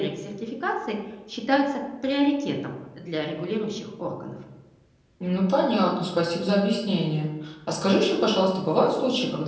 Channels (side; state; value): both; identical; correlation 1.00